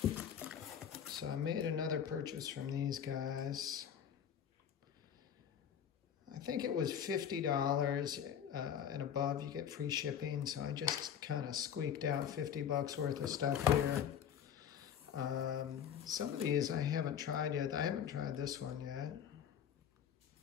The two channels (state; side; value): quieter; right; 8.7 dB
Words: So I made another purchase from these guys. I think it was $50 and above you get free shipping, so I just kind of squeaked out 50 bucks worth of stuff here. Some of these I haven't tried yet. I haven't tried this one yet.